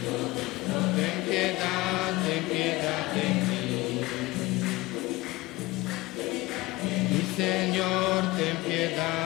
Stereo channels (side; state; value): right; quieter; 20.9 dB